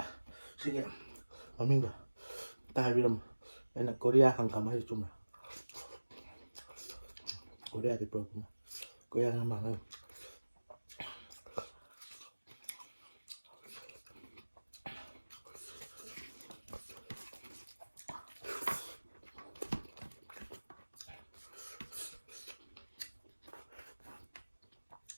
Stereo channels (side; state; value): both; inverted; correlation -1.00